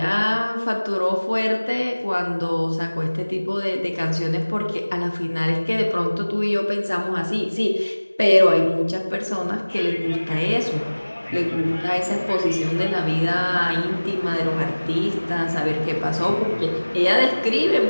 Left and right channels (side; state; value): both; inverted; correlation -1.00